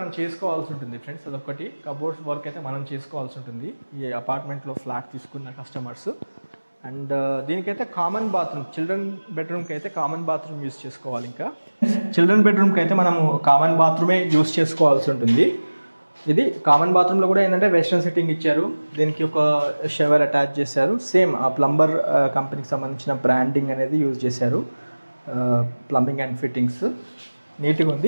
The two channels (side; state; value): both; inverted; correlation -1.00